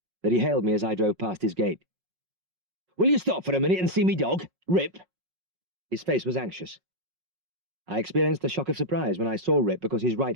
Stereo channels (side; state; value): left; late; 5.4 ms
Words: that he hailed me as I drove past his gate. "Will you stop for a minute and see me dog, Rip?" His face was anxious. I experienced a shock of surprise when I saw Rip because his